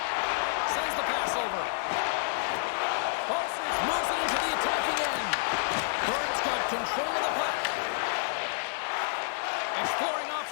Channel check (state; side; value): silent; right; 58 dB below the other